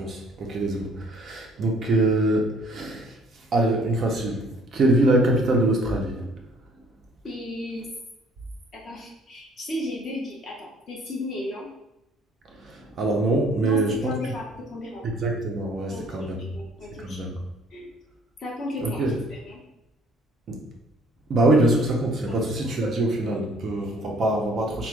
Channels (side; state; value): both; normal; correlation 0.58